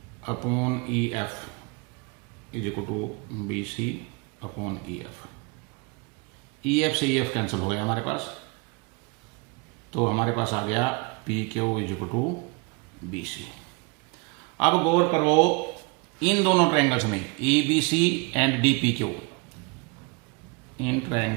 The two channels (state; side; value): quieter; left; 29.6 dB